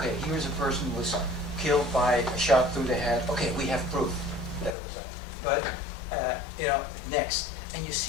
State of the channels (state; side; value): drops out; right; at 4.8 s